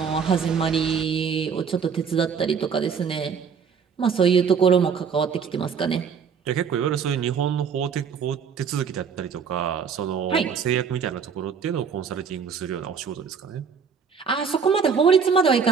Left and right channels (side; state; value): left; quieter; 6.4 dB